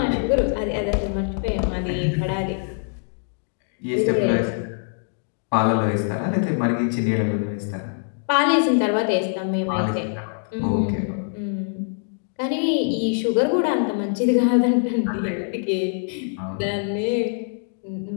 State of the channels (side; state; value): right; silent; digital silence